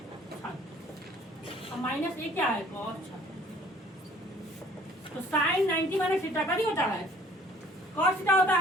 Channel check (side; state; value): both; normal; correlation 0.55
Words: और माइनस ये क्या है cos 36। तो साइन 90 माइनस थीटा का नहीं होता है cos थीटा होता